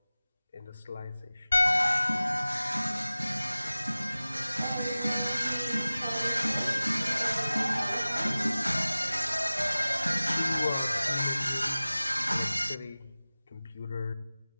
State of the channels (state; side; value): inverted; both; correlation -0.97